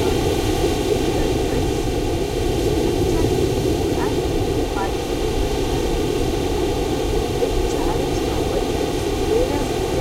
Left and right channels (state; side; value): identical; both; correlation 1.00